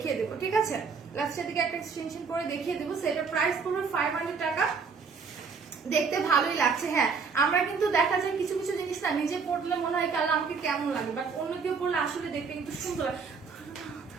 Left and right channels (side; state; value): left; quieter; 5.3 dB